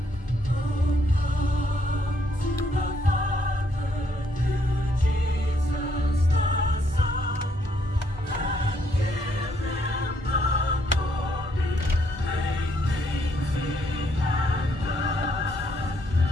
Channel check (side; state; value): both; normal; correlation 0.71